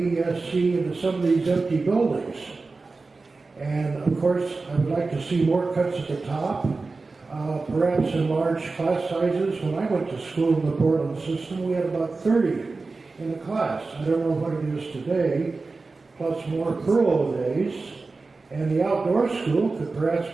into some of these empty buildings. And of course, I would like to see more cuts at the top, perhaps in large class sizes. When I went to school in the Portland system, we had about 30 in a class. I don't know what it is today, plus more furlough days. And the outdoor school could perhaps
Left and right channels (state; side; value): quieter; left; 3.8 dB